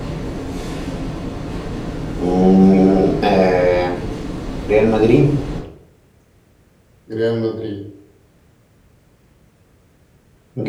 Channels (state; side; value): identical; both; correlation 1.00